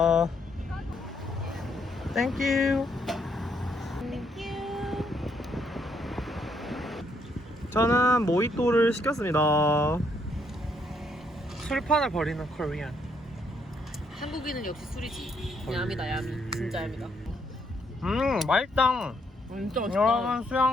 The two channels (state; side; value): normal; both; correlation 0.72